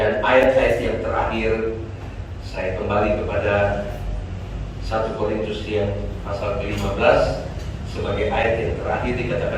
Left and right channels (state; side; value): identical; both; correlation 1.00